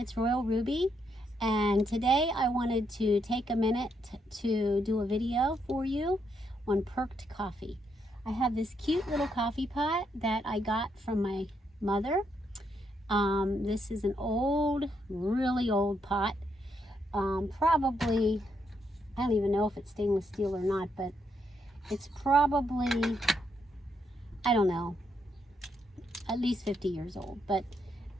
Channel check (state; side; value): normal; both; correlation 0.77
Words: Royal Ruby, and today I wanted to take a minute to do a video for you on perked coffee. I have this cute little coffee pot that I got from my mother. This is an old, really old pot. Probably, I don't even know if it's stainless steel or not, but it's probably, I don't know, at least 50 years old, but